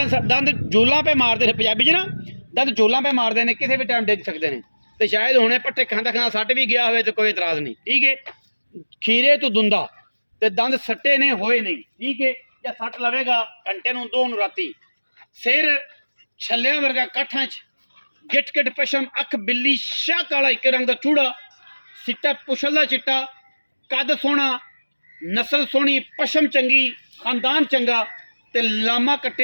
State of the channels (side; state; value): both; inverted; correlation -1.00